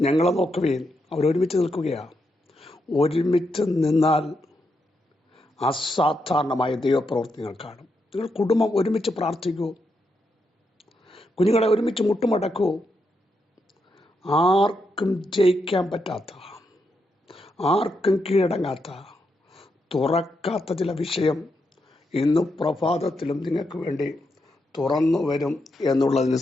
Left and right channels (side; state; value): both; normal; correlation 0.82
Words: ഞങ്ങളെ നോക്കുവേൻ. അവരൊരുമിച്ച് നിൽക്കുകയാണ്. ഒരുമിച്ച് നിന്നാൽ അസാധാരണമായ ദൈവപ്രവർത്തികൾ കാണും. നിങ്ങൾ കുടുംബം ഒരുമിച്ച് പ്രാർത്ഥിക്കൂ, കുഞ്ഞുങ്ങളെ ഒരുമിച്ച് മുട്ടുമടക്കൂ. ആർക്കും ജയിക്കാൻ പറ്റാത്ത, ആർക്കും കീഴടങ്ങാത്ത, തുറക്കാത്ത ചില വിഷയം ഇന്ന് പ്രഭാതത്തിലും നിങ്ങൾക്ക് വേണ്ടി തുറന്നു വരും എന്നുള്ളതിന്